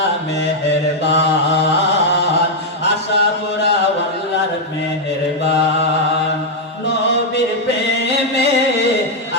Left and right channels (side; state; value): both; normal; correlation -0.01